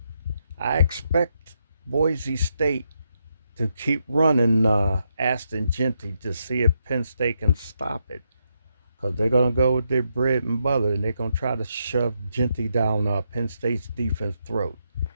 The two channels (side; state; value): both; inverted; correlation -0.81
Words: I expect Boise State to keep running Aston Genty to see if Penn State can stop it. Because they're going to go with their bread and butter and they're going to try to shove Genty down Penn State's defense throat